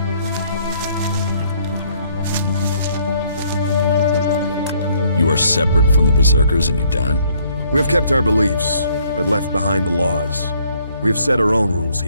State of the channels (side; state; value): both; inverted; correlation -0.65